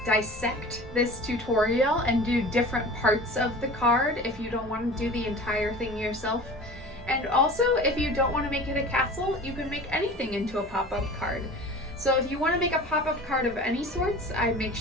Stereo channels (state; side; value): normal; both; correlation 0.39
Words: dissect this tutorial and do different parts of the card if you don't want to do the entire thing yourself. And also, if you don't want to make it a castle, you can make anything into a pop-up card. So if you want to make a pop-up card of any sorts, I'd make